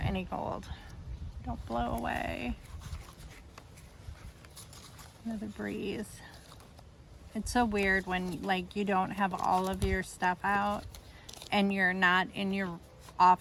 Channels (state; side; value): identical; both; correlation 1.00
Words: gold. Don't blow away. Another breeze. It's so weird when like you don't have all of your stuff out and you're not in your